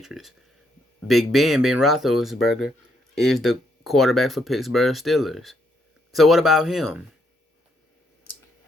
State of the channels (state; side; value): normal; both; correlation 0.74